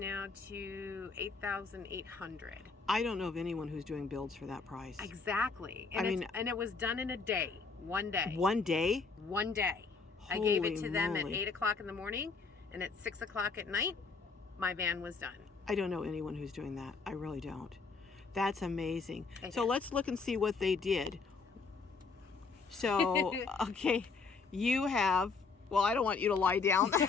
to $8,800. I don't know of anyone who's doing builds for that price. Exactly. And it was done in a day, one day. One day? One day. I gave it to them at 8 o'clock in the morning, and at 6 o'clock at night, my van was done. I don't know anyone who's doing that. I really don't. That's amazing. So let's look and see what they did. So, okay, you have, well, I don't want you to lie down.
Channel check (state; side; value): quieter; right; 4.6 dB